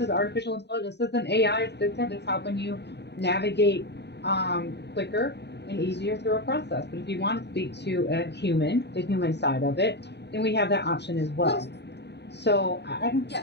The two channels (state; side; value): late; right; 0.50 ms